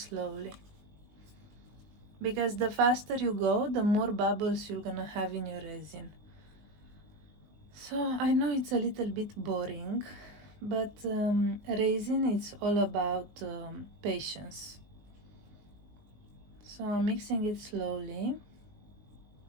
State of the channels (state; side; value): late; left; 19 ms